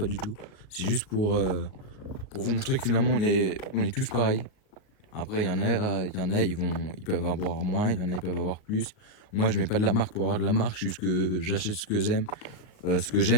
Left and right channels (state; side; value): late; right; 38 ms